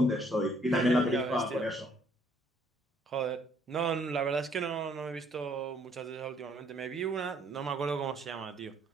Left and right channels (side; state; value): both; normal; correlation 0.65